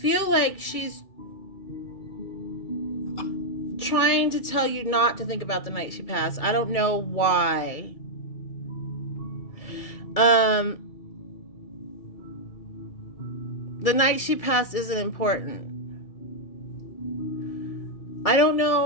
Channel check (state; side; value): late; right; 2.3 ms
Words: like she's trying to tell you not to think about the night she passed. I don't know why. The night she passed isn't important. I don't